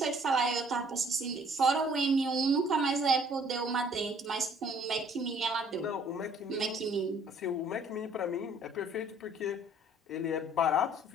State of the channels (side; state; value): both; normal; correlation 0.58